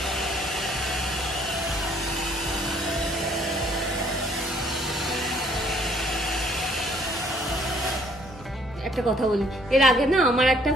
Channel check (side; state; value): both; normal; correlation 0.63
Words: একটা কথা বলি, এর আগে না আমার একটা